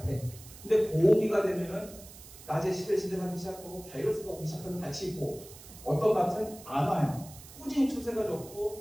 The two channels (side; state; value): right; noise; hiss, 18 dB below the sound